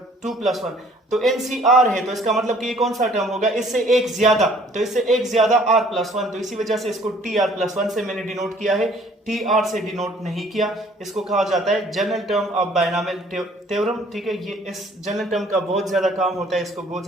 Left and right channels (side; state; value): both; normal; correlation 0.57